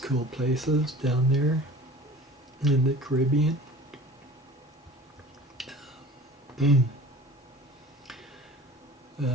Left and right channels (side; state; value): both; normal; correlation 0.42